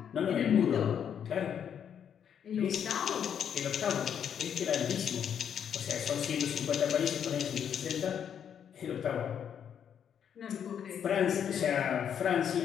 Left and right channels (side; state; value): right; quieter; 8.5 dB